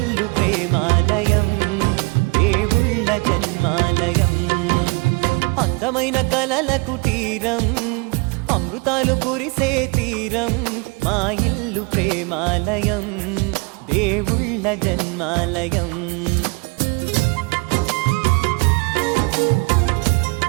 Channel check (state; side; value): quieter; left; 29.2 dB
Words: ప్రేమాలయం, దేవుళ్ళ జన్మాలయం. అందమైన కలల కుటీరం, అమృతాలు కురిసే తీరం, మా ఇల్లు ప్రేమాలయం, దేవుళ్ళ జన్మాలయం.